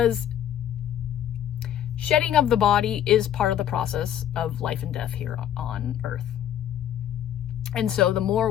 shedding of the body is part of the process of life and death here on Earth. And so the more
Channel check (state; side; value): quieter; right; 10.7 dB